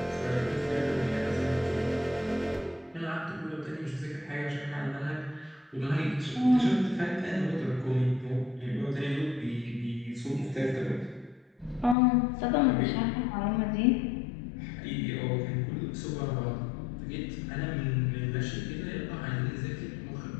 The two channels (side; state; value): right; drops out; at 12.0 s